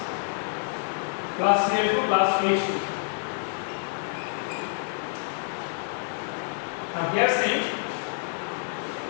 plus Cl2 plus H2. Now here see,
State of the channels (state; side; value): silent; right; 58 dB below the other